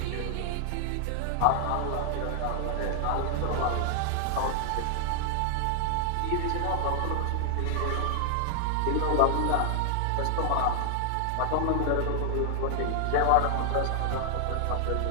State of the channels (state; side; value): different; both; correlation 0.00